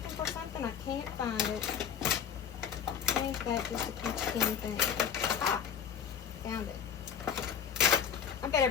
for something, I can't find it. Ain't that just a peach thing? Ah, found it. I bet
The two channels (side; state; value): right; quieter; 7.9 dB